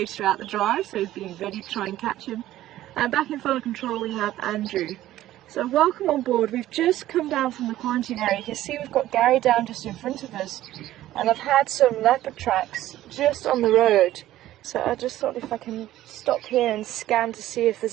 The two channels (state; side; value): quieter; left; 14.3 dB